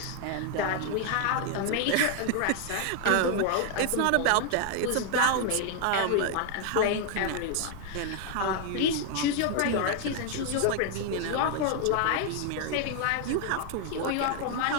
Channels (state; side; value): different; both; correlation 0.00